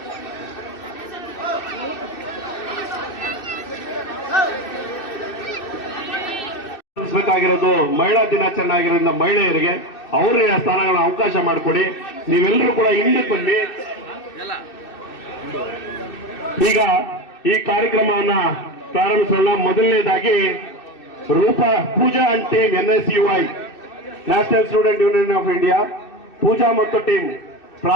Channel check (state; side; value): late; right; 2.6 ms